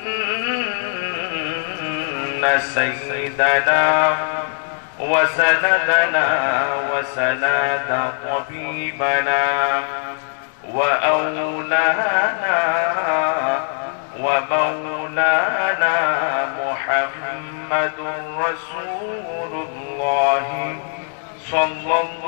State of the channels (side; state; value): right; silent; digital silence